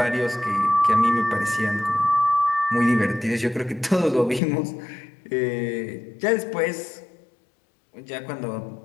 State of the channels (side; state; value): right; drops out; at 4.4 s